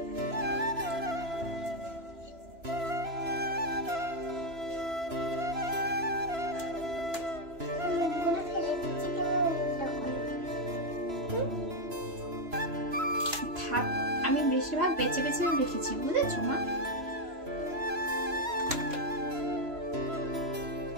আমি বেশিরভাগ বেছে বেছে রেখেছি, বুঝেছো মা?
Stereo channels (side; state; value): left; late; 3.0 ms